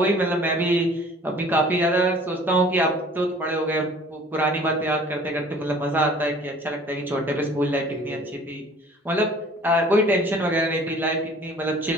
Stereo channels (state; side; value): normal; both; correlation 0.50